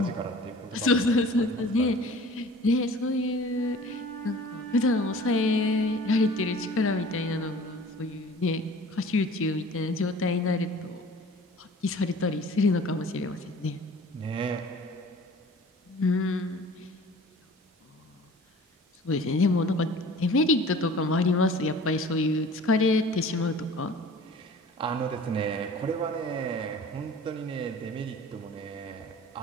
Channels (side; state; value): both; normal; correlation 0.45